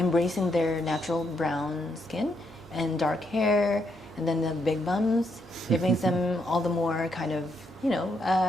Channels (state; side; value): normal; both; correlation 0.77